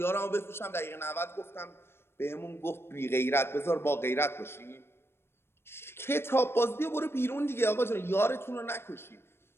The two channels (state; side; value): late; right; 0.12 ms